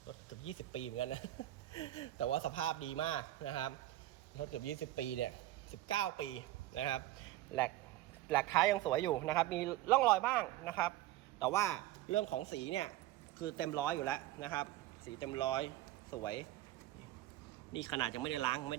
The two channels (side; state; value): left; quieter; 15.4 dB